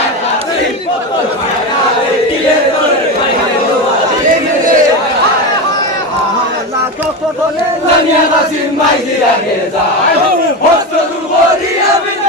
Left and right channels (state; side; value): normal; both; correlation 0.18